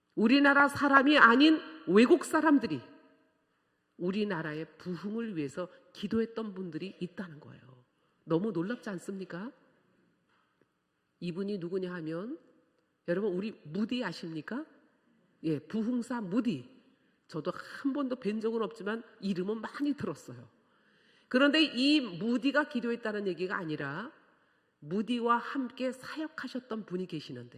우리나라 사람이 아닌 외국 사람들이 우리나라의 부흥을 위해서 기도했던 분들이 있다는 거예요. 너무 놀랍지 않습니까? 이분이 누구냐 하면, 여러분, 우리 무디 아십니까? 예, 부흥사 무디. 저도 한 번도 뵌 적은 없지만 이름은 많이 들었어요. 그런데 이 무디가 기도했다는 얘기가 아니라 무디와 함께 사역하셨던 분이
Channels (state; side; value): identical; both; correlation 1.00